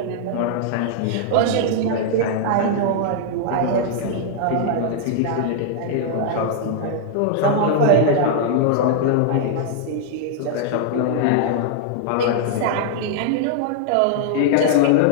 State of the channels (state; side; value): different; both; correlation -0.01